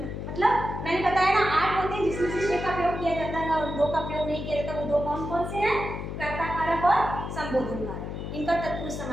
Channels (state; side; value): noise; left; hum, 6 dB below the sound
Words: मतलब मैंने बताया ना 8 होते हैं जिसमें से 6 का प्रयोग किया जाता है और 2 का प्रयोग नहीं किया जाता। वो 2 कौन कौन से हैं? कर्ता कारक और संबोधन कारक। इनका तत्पुरुष